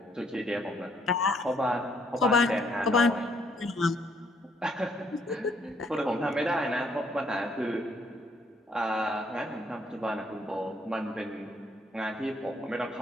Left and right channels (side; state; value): both; normal; correlation 0.68